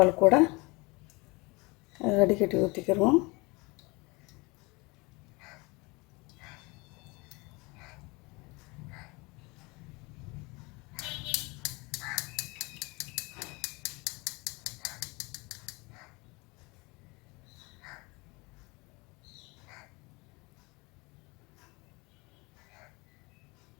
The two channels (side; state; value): right; quieter; 26.0 dB